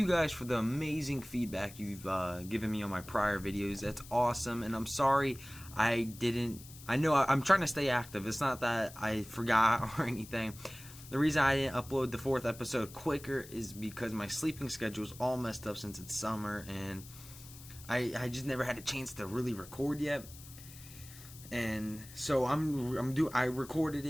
guys for the amazing feedback you've given me on my prior videos. That's awesome, and I'm sorry I know I'm trying to stay active. It's not that I forgot or anything. The reason I didn't upload the 4th episode quicker is because my sleeping schedule is all messed up since it's summer, and I just never had a chance to really record yet. And so I recorded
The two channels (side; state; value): left; noise; hiss, 17 dB below the sound